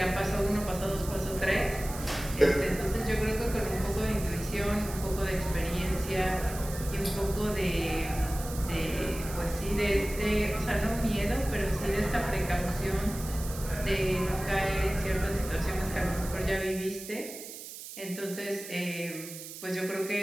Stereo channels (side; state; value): right; noise; hiss, 12 dB below the sound